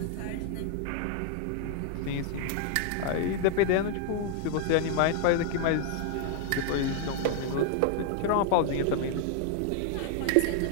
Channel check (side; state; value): both; different; correlation 0.00